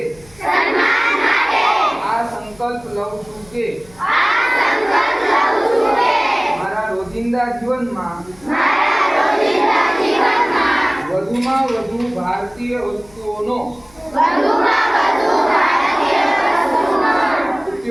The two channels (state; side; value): noise; left; hum, 27 dB below the sound